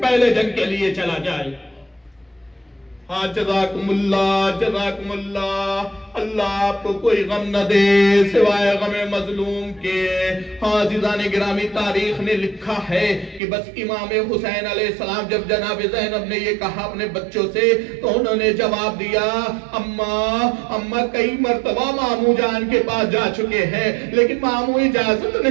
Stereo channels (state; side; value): drops out; left; at 13.4 s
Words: پہلے جنگ کے لیے چلا جائے۔ ہاں جزاکم اللہ، اللہ آپ کو کوئی غم نہ دے سوائے غم مظلوم کے۔ ہاں عزیزان گرامی، تاریخ نے لکھا ہے کہ بس امام حسین علیہ السلام جب جناب زینب نے یہ کہا اپنے بچوں سے تو انہوں نے جواب دیا، اماں کئی مرتبہ ماموں جان کے پاس جا چکے ہیں لیکن ماموں اجازت